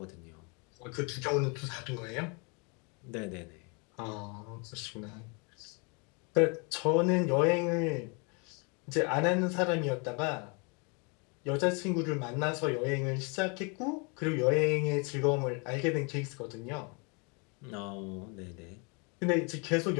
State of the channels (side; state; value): right; quieter; 33.1 dB